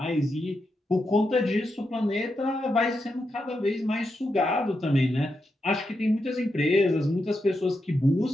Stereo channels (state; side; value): normal; both; correlation 0.85